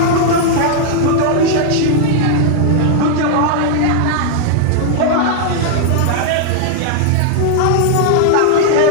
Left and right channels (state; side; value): different; both; correlation -0.01